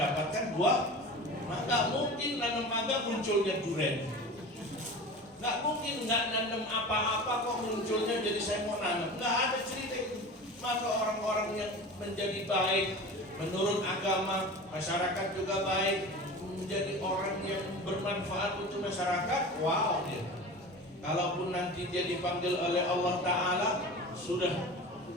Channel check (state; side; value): normal; both; correlation 0.34